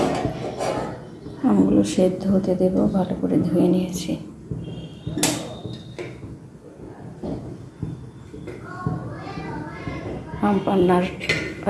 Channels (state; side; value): identical; both; correlation 1.00